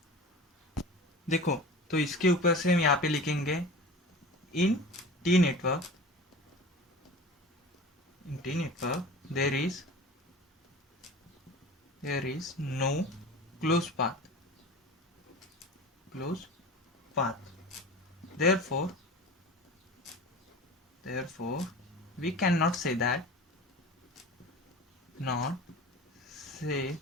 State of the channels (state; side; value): normal; both; correlation 0.36